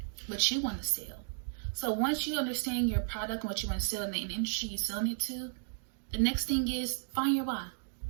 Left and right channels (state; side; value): silent; left; digital silence